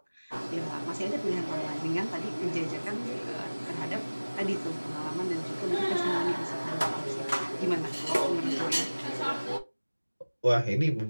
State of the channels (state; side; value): inverted; both; correlation -1.00